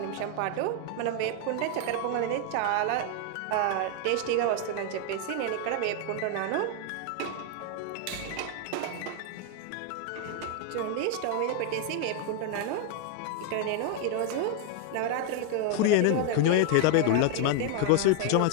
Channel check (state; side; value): different; both; correlation 0.00